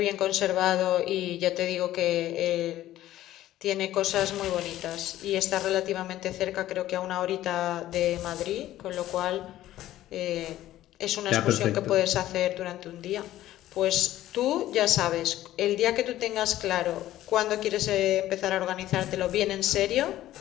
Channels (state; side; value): quieter; right; 14.1 dB